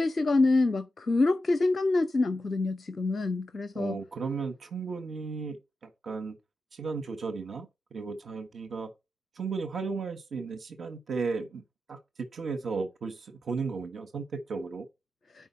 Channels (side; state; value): both; normal; correlation 0.88